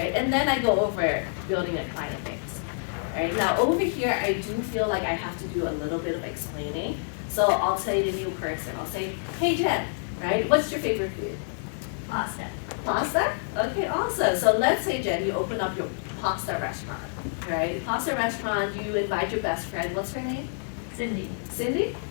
And then I go over building a client base. Right, now over here, I do feel like I have to do a little bit of explaining. So I'll say the new person, I'll say, hey Jen, right, what's your favorite food? Pasta. Pasta? Okay, awesome. So let's say, Jen, you open up your pasta restaurant, right? Pasta restaurant, you invite your best friend, what's her name? Cindy. Cindy?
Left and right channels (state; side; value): silent; right; digital silence